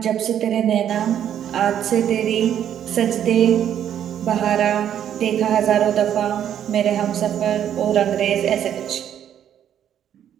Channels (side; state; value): left; quieter; 9.9 dB